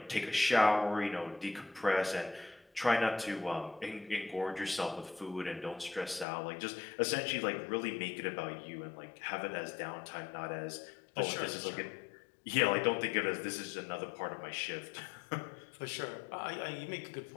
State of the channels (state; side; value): drops out; right; at 6.2 s